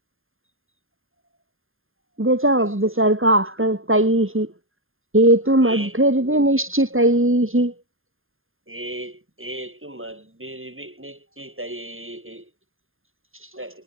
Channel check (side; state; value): left; late; 0.60 ms